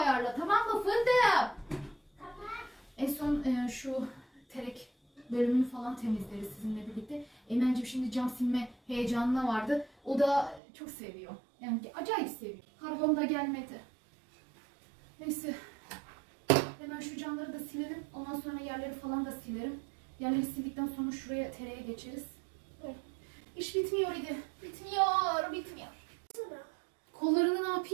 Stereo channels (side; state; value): left; drops out; at 10.6 s